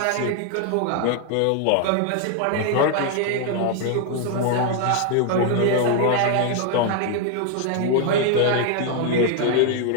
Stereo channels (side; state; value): both; different; correlation 0.00